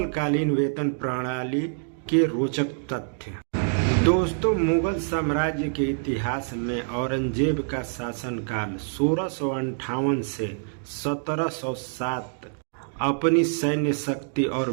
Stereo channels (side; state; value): left; silent; digital silence